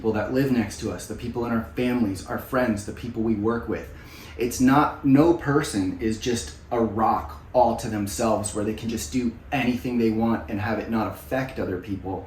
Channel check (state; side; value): identical; both; correlation 1.00